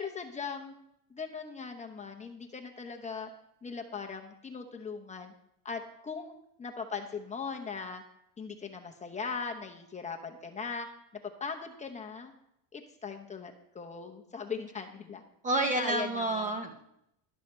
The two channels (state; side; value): normal; both; correlation 0.06